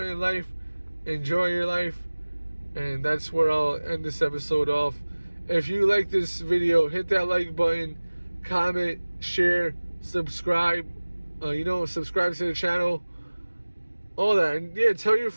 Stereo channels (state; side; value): inverted; both; correlation -1.00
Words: in life, enjoy your life, and that's where I'll end this episode off. If you like this video, hit that like button, comment, share, subscribe, you know, subscribe to the channel, all that. And yeah, tell your